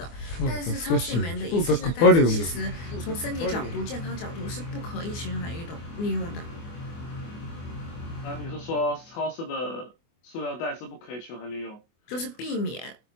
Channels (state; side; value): late; right; 24 ms